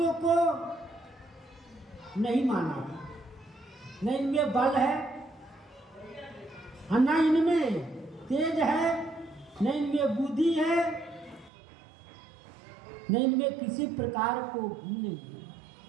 को नहीं माना, न इनमें बल है, न इनमें तेज है, न इनमें बुद्धि है, न इनमें किसी प्रकार को गुण नहीं।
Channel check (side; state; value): left; drops out; at 11.5 s